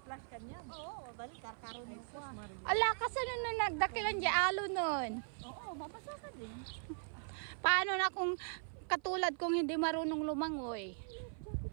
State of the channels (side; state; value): left; silent; 52 dB below the other